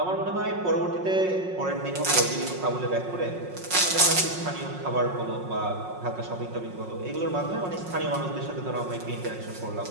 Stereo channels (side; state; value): left; late; 5.5 ms